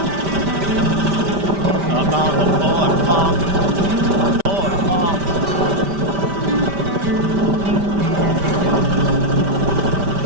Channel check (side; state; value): left; late; 5.1 ms